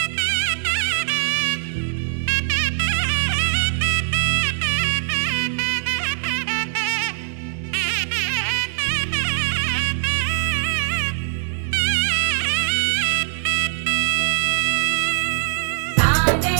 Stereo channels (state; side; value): silent; left; digital silence